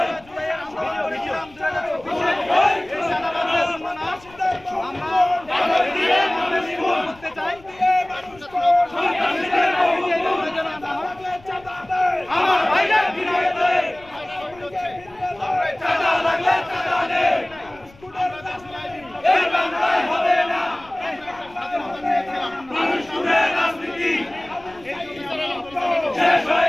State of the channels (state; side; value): noise; left; rumble, 25 dB below the sound